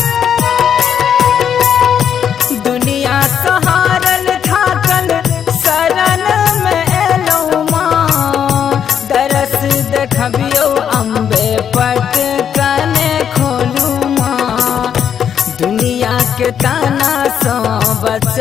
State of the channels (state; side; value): quieter; right; 8.4 dB